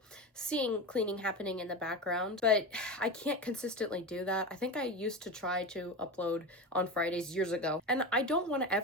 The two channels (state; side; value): normal; both; correlation 0.23